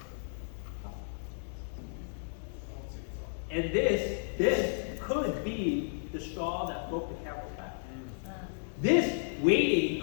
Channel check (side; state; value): right; silent; digital silence